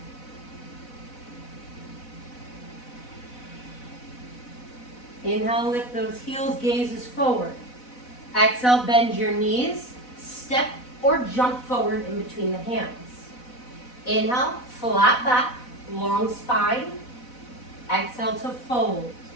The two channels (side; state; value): right; late; 4.0 ms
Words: Inhale, lift those heels, gazes forward. Exhale, bend your knees, step or jump forward in between the hands. Inhale, flat back, long spine. Exhale to fold.